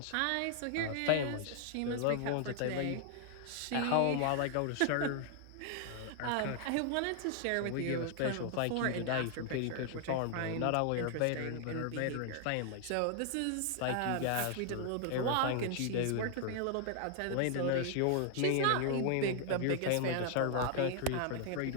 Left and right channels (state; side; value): different; both; correlation 0.00